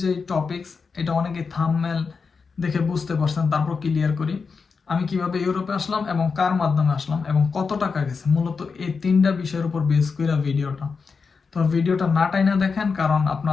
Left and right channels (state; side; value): quieter; right; 5.1 dB